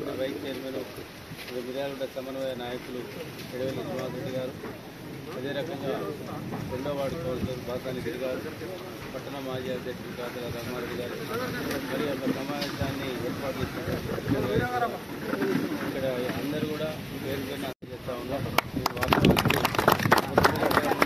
vice chairman, Miryalaguda సమన్వయ నాయకులు ఎడవెల్లి శ్రీనివాసరెడ్డి గారు, అదే రకంగా 2వ వార్డు కౌన్సిలర్ బాసాని గిరి గారు, పట్టణ మాజీ అధ్యక్షులు కాతల రఘుమారెడ్డి గారు, మరి యొక్క సమావేశాన్ని ఏర్పాటు చేసినటువంటి ఇక్కడ అందరూ కూడా పేరు పేరున చేస్తూ ఉన్నారు.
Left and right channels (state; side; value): identical; both; correlation 1.00